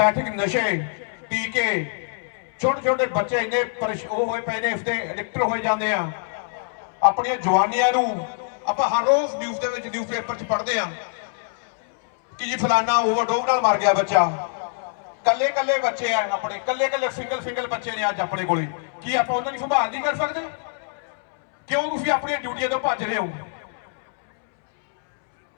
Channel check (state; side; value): silent; right; 63 dB below the other